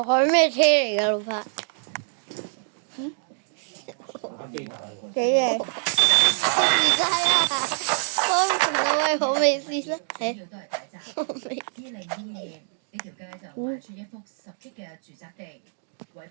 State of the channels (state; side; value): silent; left; digital silence